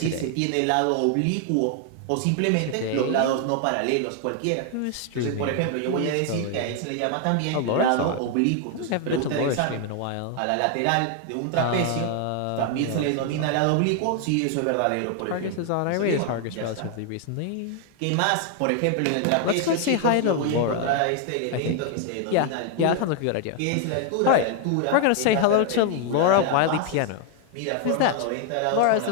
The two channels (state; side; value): different; both; correlation 0.00